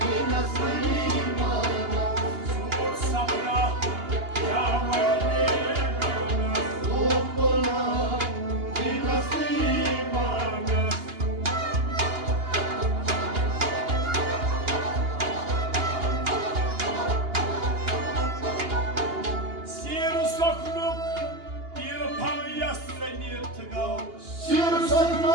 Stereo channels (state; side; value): late; left; 2.8 ms